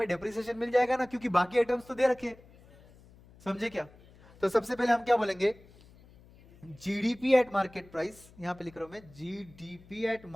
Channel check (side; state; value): left; noise; hum, 25 dB below the sound